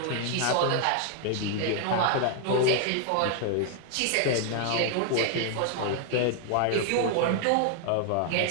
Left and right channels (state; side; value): different; both; correlation 0.00